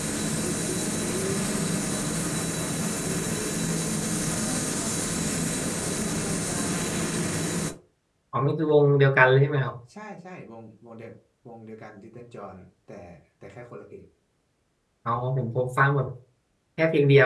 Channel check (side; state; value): both; identical; correlation 1.00